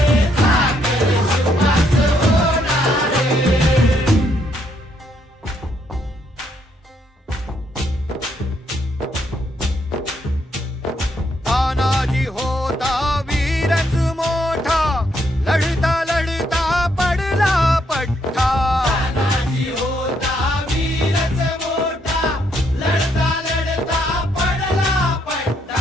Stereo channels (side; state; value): both; normal; correlation 0.73